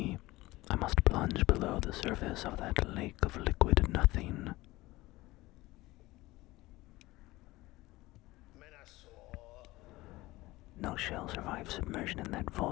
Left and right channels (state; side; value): quieter; right; 19.2 dB